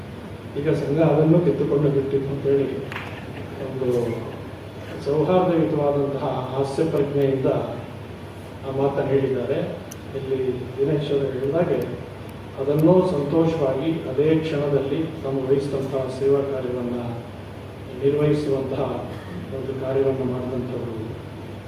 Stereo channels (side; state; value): both; identical; correlation 1.00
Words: ಈಗ ಸಂಘ ಅದನ್ನು ಕಿತ್ತುಕೊಂಡು ಬಿಟ್ಟಿತ್ತು ಅಂತೇಳಿ ಒಂದು ಸೌಹಾರ್ದಯುತವಾದಂತಹ ಹಾಸ್ಯ ಪ್ರಜ್ಞೆಯಿಂದ ಆ ಮಾತನ್ನು ಹೇಳಿದ್ದಾರೆ. ಇಲ್ಲಿ ದಿನೇಶ್ವರ ಹೇಳಿದಾಗೆ ಅದನ್ನೂ ಸಂತೋಷವಾಗಿ ಅದೇ ಕ್ಷಣದಲ್ಲಿ ತಾವು ವಹಿಸಿದಂತಹ ಸೇವಾ ಕಾರ್ಯವನ್ನು ನಿರ್ವಹಿಸುವಂತಹ ಒಂದು ಕಾರ್ಯವನ್ನು ಮಾಡಿದಂಥವರು